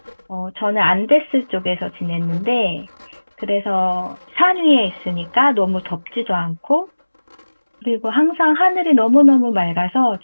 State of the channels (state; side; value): inverted; both; correlation -1.00